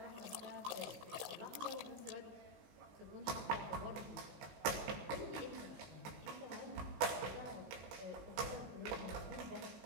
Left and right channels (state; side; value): late; left; 17 ms